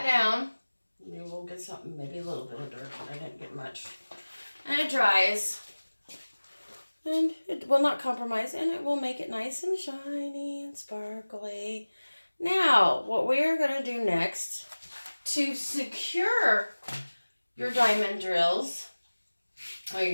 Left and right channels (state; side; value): inverted; both; correlation -1.00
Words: down. You will get something, maybe a little bit of dirt, but I didn't get much. And it dries. And it will not compromise, and it will make it nice and shiny and sparkly. Now, what we are going to do next to secure your diamond drills, or